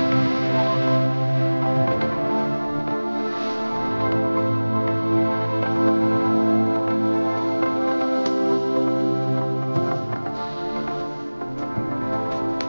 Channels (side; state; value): both; inverted; correlation -1.00